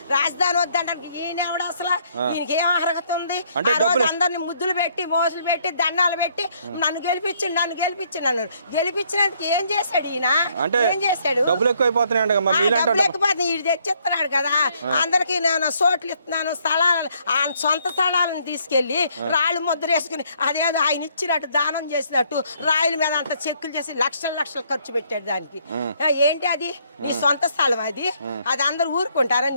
రాజధాని వద్దంటానికి ఈయన ఎవడు అసలు? ఈయనకి ఏం అర్హత ఉంది? ఆ రోజు అందరిని ముద్దులు పెట్టి మోసులు పెట్టి దండాలు పెట్టి నన్ను గెలిపించిండు అన్నాడు. గెలిపించినందుకు ఏం చేశాడు ఈయన? ఏం చేశాడు? డబ్బులు లేకపోతే ఇది తెచ్చిస్తున్నాడు కదా, అందరికి నేను సోట్లు ఇస్తున్నాను, స్థలాలు సొంత స్థలాలను తీసుకెళ్లి రాళ్ళు ముద్ర వేసుకుని అదేదో ఆయన ఇచ్చినట్టు దానం చేసినట్టు రాయల మీద అంత చెక్కులు చేసి లక్షలు ఖర్చు పెట్టాడు దానికి. ఏంటి అది? నీ సొంత స్థలం అది అందరు ఊరుకుంటారా?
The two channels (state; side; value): inverted; both; correlation -0.67